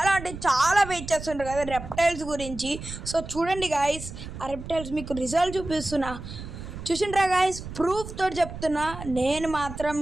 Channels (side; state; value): right; noise; rumble, 11 dB below the sound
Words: అంటే చాలా వెయిట్ చేస్తుంటారు కదా రెప్టైల్స్ గురించి. సో చూడండి గాయస్, ఆ రెప్టైల్స్ మీకు రిజల్ట్ చూసిండ్రా గాయస్, ప్రూఫ్ తోటి చెప్తున్నా. నేను మాత్రం